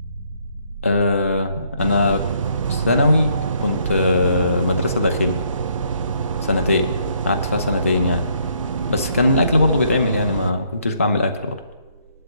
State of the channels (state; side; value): inverted; both; correlation -0.68